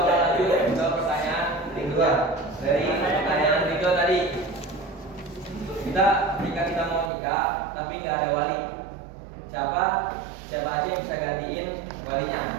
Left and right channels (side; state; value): left; drops out; at 7.1 s